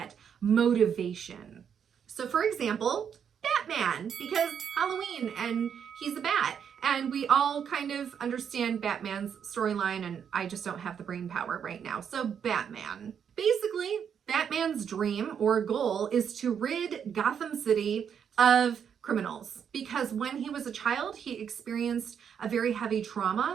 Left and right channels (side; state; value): left; quieter; 7.8 dB